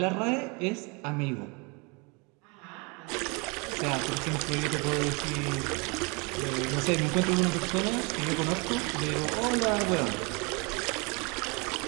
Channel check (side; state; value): left; quieter; 30.4 dB